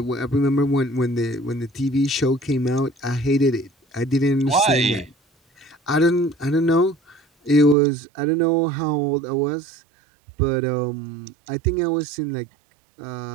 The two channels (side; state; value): left; drops out; at 7.8 s